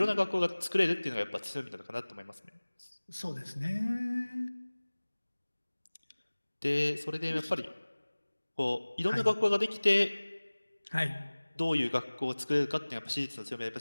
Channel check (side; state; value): both; inverted; correlation -1.00